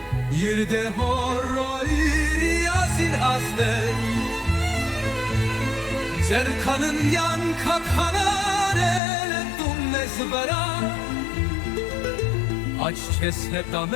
Yirde horro iri yazir azden Zerkanın yan kakhanare Dumnez vera Aç kesne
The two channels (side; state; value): right; drops out; at 9.0 s